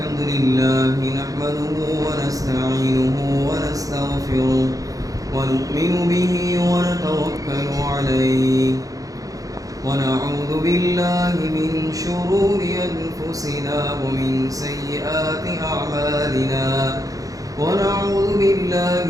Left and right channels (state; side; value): late; left; 0.17 ms